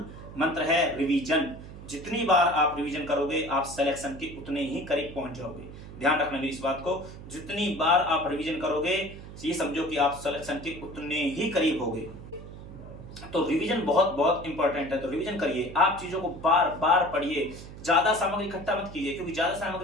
मंत्र है, रिवीजन। जितनी बार आप रिवीजन करोगे आप सिलेक्शन के उतने ही करीब पहुंच जाओगे। ध्यान रखना मेरी इस बात को, जितनी बार आप रिवीजन करोगे ये समझो कि आप सिलेक्शन के उतने ही करीब होगे। तो रिवीजन बहुत बहुत इंपॉर्टेंट है। तो रिवीजन करिए, आप चीजों को बार बार पढ़िए, ज्यादा सामग्री इकट्ठा मत कीजिए, क्योंकि ज्यादा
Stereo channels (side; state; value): right; noise; hum, 14 dB below the sound